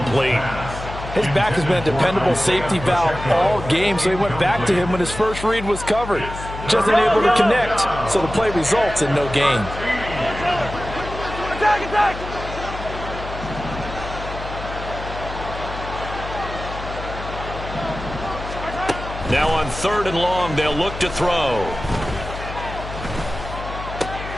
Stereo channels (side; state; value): left; noise; hum, 10 dB below the sound